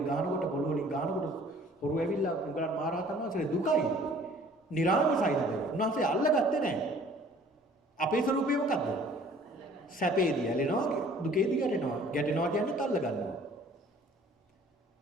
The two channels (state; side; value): normal; both; correlation 0.53